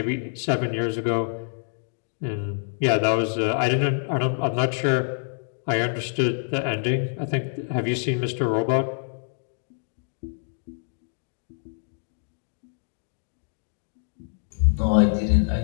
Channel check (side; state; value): right; silent; digital silence